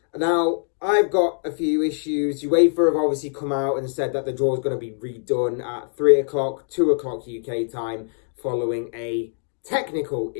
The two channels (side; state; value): right; silent; 62 dB below the other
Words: Now, I've got a few issues. UEFA have obviously come out and said that the draw is going to be redone at 3 o'clock, 2 o'clock UK time, following a technical